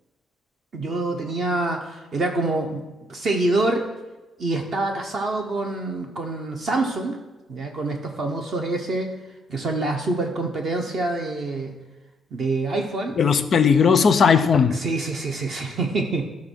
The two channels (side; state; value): both; normal; correlation 0.68